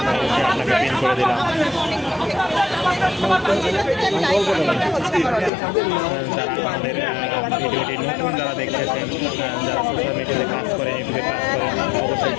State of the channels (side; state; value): right; drops out; at 5.5 s